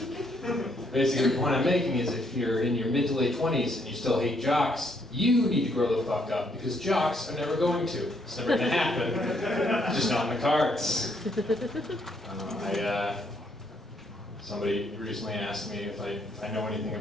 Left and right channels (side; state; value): both; normal; correlation 0.71